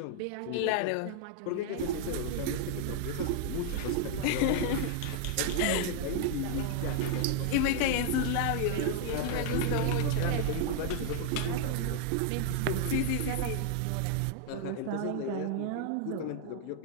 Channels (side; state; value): both; different; correlation 0.00